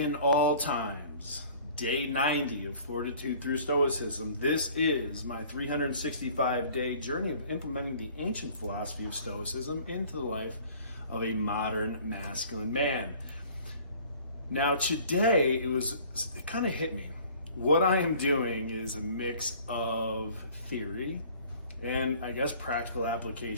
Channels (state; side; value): inverted; both; correlation -0.51